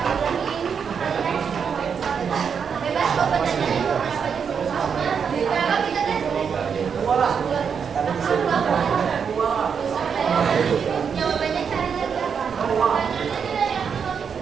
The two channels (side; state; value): left; quieter; 6.7 dB